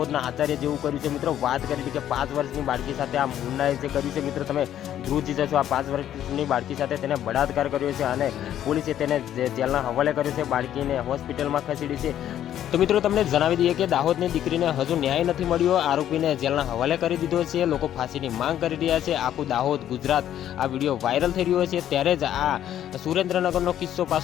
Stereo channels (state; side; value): quieter; right; 11.2 dB